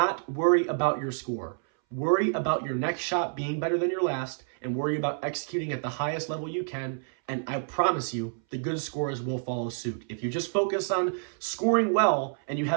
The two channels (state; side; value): silent; left; 59 dB below the other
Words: worry about your score. Worry about your next shot being better than your last, and worry about executing at the highest level you can, and I promise you, the good scores will follow suit. If you just focus on scoring well, and you